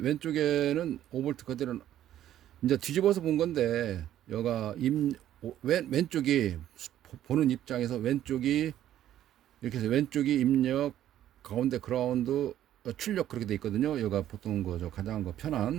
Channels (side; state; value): left; quieter; 11.9 dB